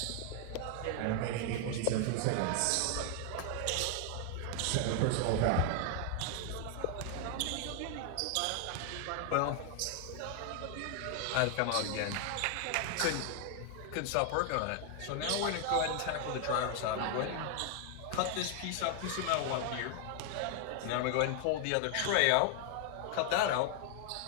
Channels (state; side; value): different; both; correlation 0.00